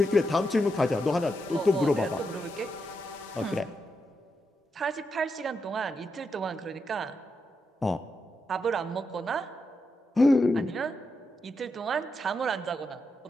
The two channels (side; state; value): both; normal; correlation 0.84